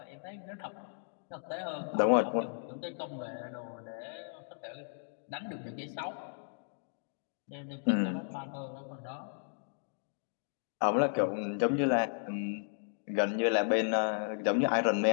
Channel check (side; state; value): right; silent; digital silence